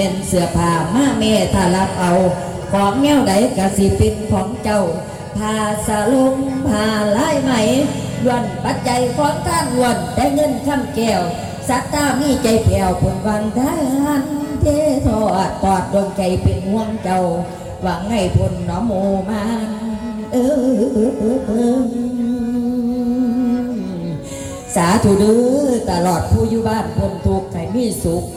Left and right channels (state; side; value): identical; both; correlation 1.00